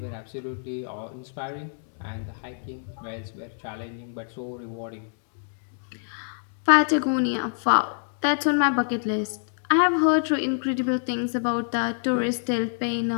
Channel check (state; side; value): silent; right; digital silence